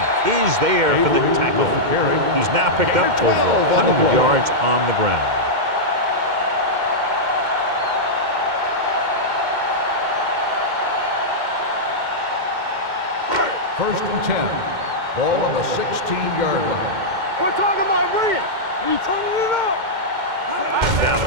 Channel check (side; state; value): left; late; 2.1 ms